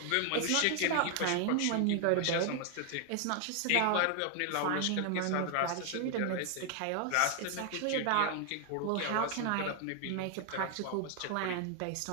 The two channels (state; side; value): different; both; correlation 0.00